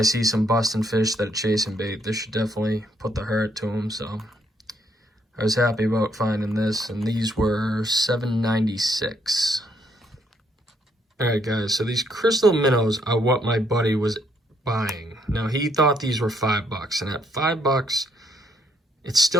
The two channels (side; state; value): both; normal; correlation 0.71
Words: see some busting fish that are chasing bait. This should definitely put the hurt to them. So I was happy about finding this, and these were $7.96. All right, guys, so these crystal minnows are what my buddy was buying. Now he thought these were $5, and at $5, it's